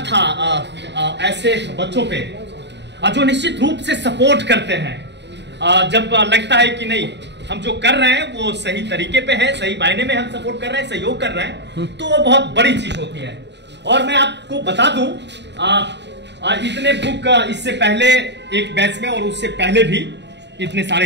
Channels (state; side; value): late; left; 0.51 ms